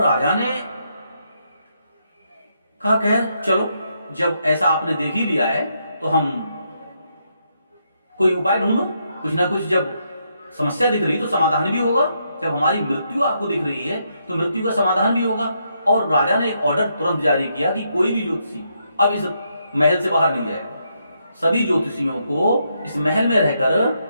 राजा ने कहा, खैर चलो, जब ऐसा आपने देख ही लिया है तो हम कोई उपाय ढूंढो। कुछ ना कुछ, जब समस्या दिख रही तो समाधान भी होगा। जब हमारी मृत्यु आपको दिख रही है तो मृत्यु का समाधान भी होगा। और राजा ने एक ऑर्डर तुरंत जारी किया कि कोई भी ज्योतिषी अब इस महल से बाहर नहीं जाएगा। सभी ज्योतिषियों को इस महल में रहकर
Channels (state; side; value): inverted; both; correlation -0.78